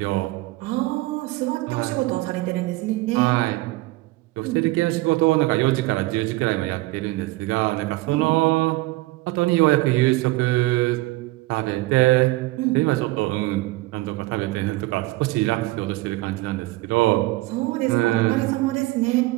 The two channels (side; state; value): left; quieter; 20.0 dB